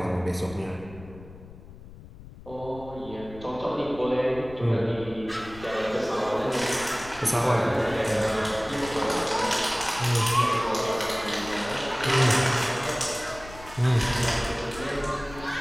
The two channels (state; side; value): noise; left; rumble, 17 dB below the sound